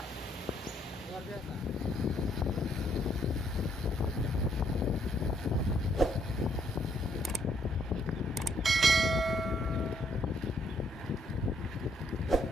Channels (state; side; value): normal; both; correlation 0.70